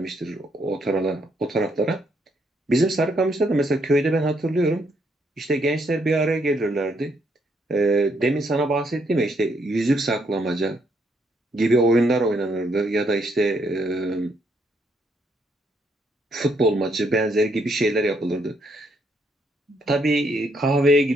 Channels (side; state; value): both; normal; correlation 0.73